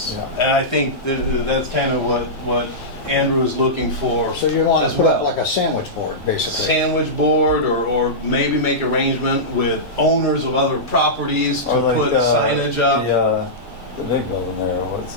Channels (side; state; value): both; normal; correlation -0.14